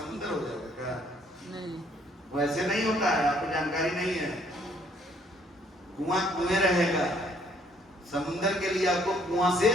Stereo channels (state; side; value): normal; both; correlation 0.64